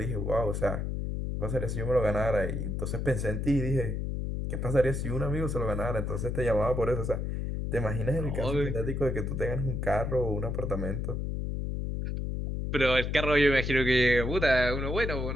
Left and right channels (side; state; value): left; noise; hum, 2 dB below the sound